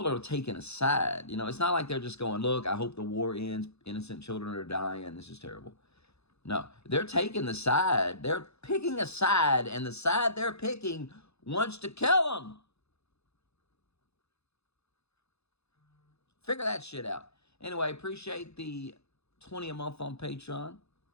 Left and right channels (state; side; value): late; right; 0.79 ms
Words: are taking a side. It's not like they're just going, look, I hope the war ends. Innocent children are dying. This is terrible. No, they're taking the side. They're picking a side, and the side they're picking wants to kill them. Figure that shit out. Anyway, appreciate the 20 a month on Patreon.